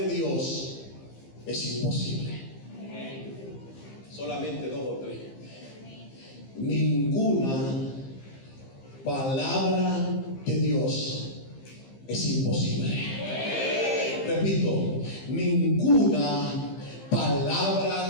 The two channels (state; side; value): late; right; 15 ms